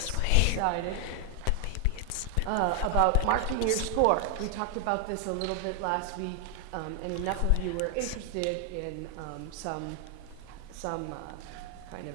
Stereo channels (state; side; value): different; both; correlation 0.00